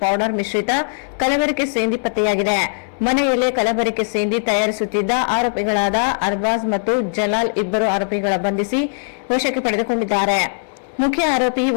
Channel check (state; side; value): silent; right; 66 dB below the other